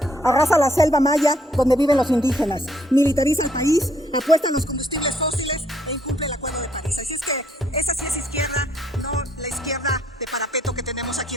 arrasa la selva maya donde viven los indígenas, militariza el país, apuesta a los combustibles fósiles e incumple el acuerdo de París. Así es que esa sí es izquierda, no la izquierda de parapeto que tenemos aquí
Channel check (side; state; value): both; normal; correlation 0.68